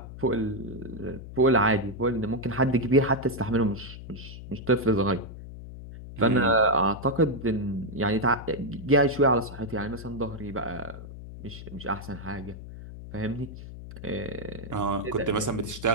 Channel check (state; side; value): noise; left; hum, 13 dB below the sound